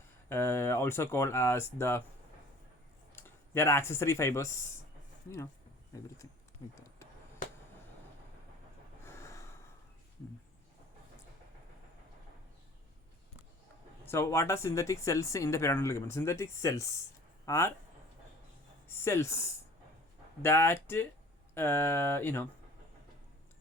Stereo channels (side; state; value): both; normal; correlation 0.47